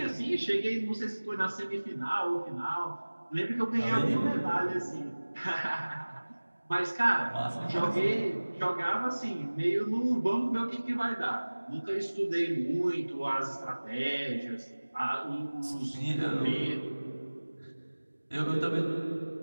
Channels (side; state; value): both; inverted; correlation -1.00